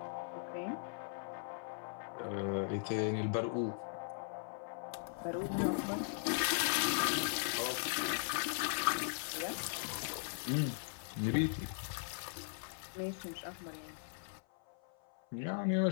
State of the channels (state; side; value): silent; right; 52 dB below the other